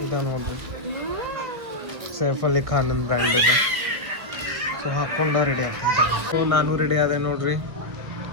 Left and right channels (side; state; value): left; late; 1.4 ms